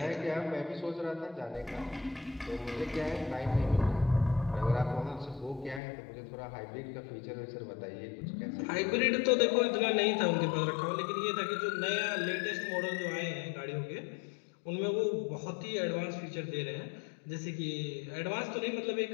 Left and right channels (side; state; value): right; drops out; at 5.8 s